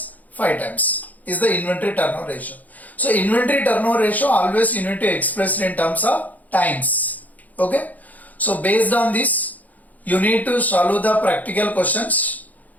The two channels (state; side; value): late; right; 0.079 ms